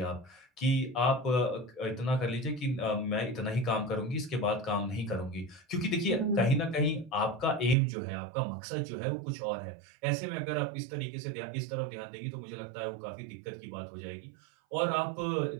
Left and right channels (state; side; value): drops out; left; at 7.8 s